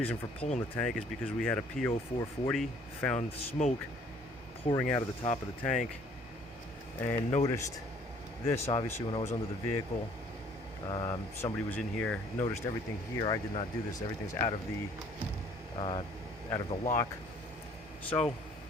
for pulling the tank is because we had a PO 440, found smoke pouring out of the top of the tank, and noticed this, obviously, when I was under the vehicle. Somebody was in here, noticed everything here. I did not do this. Everything's out of the lock. So,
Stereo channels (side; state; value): both; normal; correlation 0.58